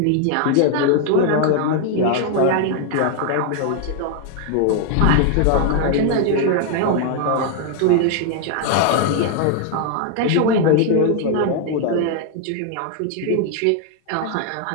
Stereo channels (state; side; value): different; both; correlation 0.00